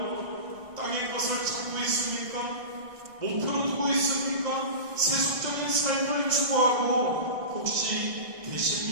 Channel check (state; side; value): late; left; 1.6 ms